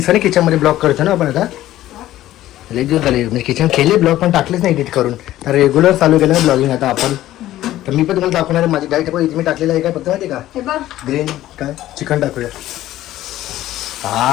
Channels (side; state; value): right; quieter; 14.3 dB